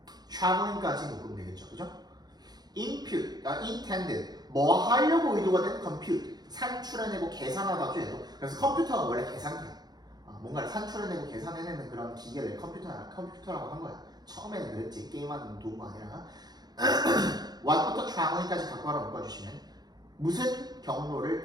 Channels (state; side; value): late; left; 0.19 ms